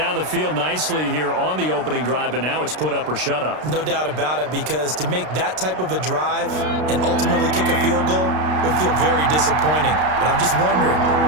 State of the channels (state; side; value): late; left; 33 ms